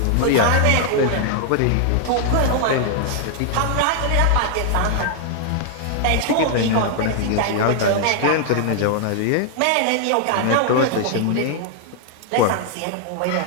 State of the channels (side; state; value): both; different; correlation 0.00